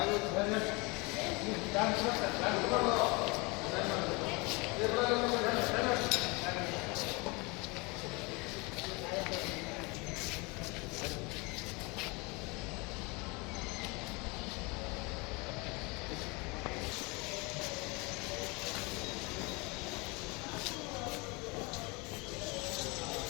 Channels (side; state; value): right; quieter; 27.5 dB